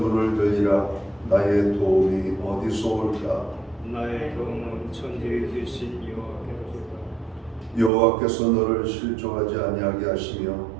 들이라. 나의 도움이 어디서 올까? 나의 도움은 천지에 계신 여호와께로소이다. 여호와께서 너를 실족하지 아니하게 하시며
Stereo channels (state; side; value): drops out; left; at 7.9 s